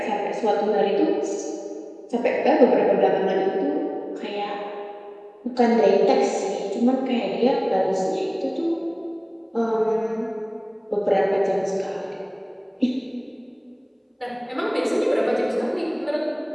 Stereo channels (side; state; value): both; identical; correlation 1.00